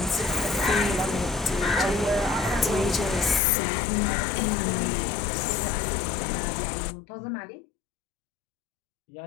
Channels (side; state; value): right; drops out; at 3.4 s